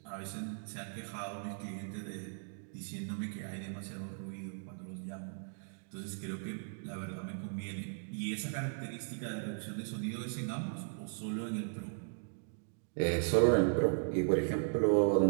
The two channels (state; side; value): silent; left; digital silence